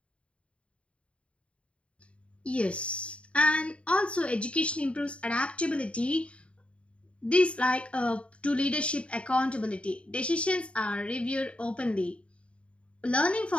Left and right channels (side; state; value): right; late; 0.060 ms